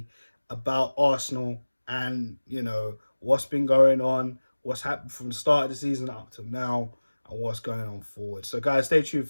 about Arsenal, and, you know, what's been going on, what's happened from the start of the season up to now, and what's going on forward. So guys, stay tuned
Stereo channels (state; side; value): inverted; both; correlation -1.00